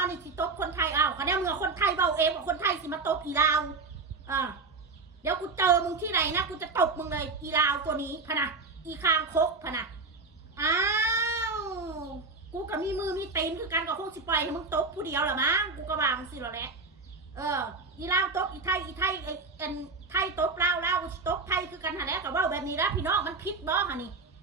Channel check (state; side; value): quieter; left; 3.9 dB